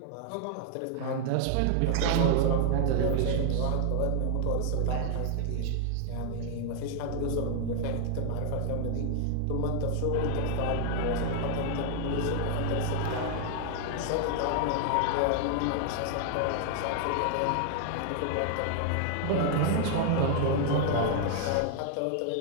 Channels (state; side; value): different; both; correlation 0.00